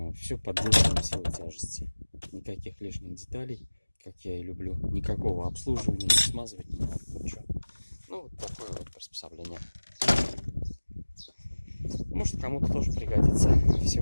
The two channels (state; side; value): inverted; both; correlation -1.00